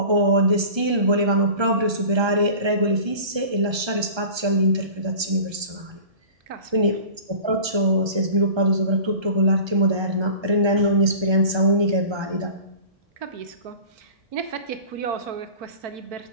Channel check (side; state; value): left; late; 1.3 ms